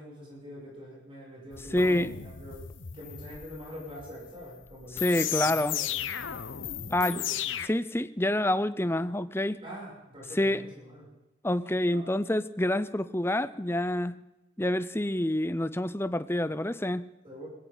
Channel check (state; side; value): normal; both; correlation 0.75